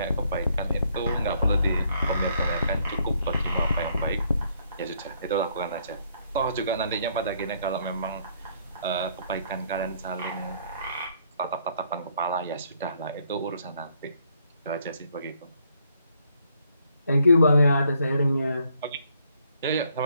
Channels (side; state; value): both; inverted; correlation -0.69